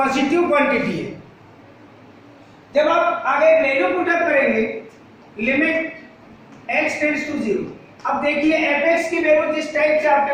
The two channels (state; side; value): identical; both; correlation 1.00